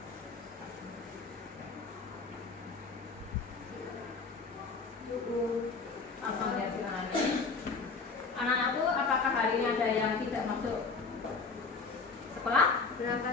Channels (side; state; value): right; quieter; 4.5 dB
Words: Langsung lihat silakan. Anak-anakku, apakah hari ini ada yang tidak masuk sekolah?